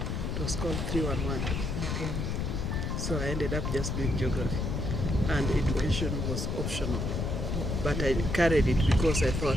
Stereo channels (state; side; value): noise; left; rumble, 1 dB below the sound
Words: It was called 311. Okay. So I ended up just doing geography, and education was optional. But I carried it because I thought